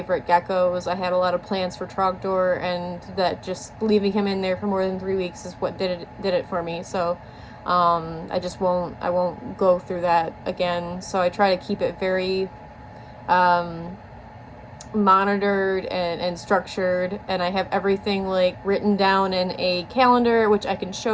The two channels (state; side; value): identical; both; correlation 1.00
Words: geckos. I had a lot of plans for Trogdor, and that just leaving him in there for more than 3 weeks is what did it for me. So I won't go through that again. So I try to keep it very monitored and structured, and I have everything like written down in a calendar, which I can